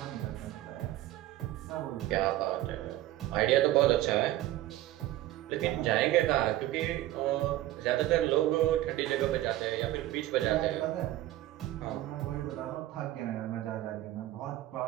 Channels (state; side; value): quieter; left; 15.0 dB